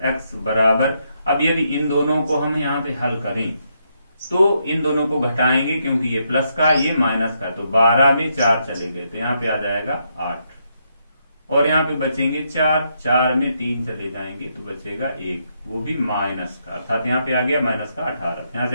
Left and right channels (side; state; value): both; inverted; correlation -0.78